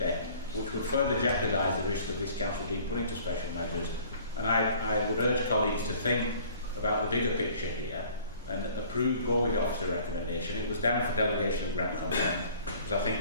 which would further jeopardise the risk of this council being put into special measures. And I would urge colleagues to think about the bigger picture here and go with the officer recommendation. It was down for delegation of grant consent because I think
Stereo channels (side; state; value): both; inverted; correlation -0.52